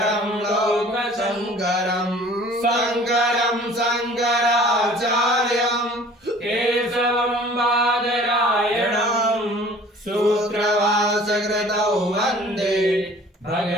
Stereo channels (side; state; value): both; normal; correlation 0.49